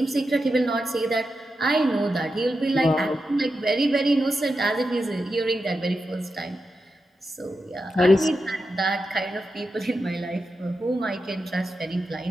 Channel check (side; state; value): both; normal; correlation 0.89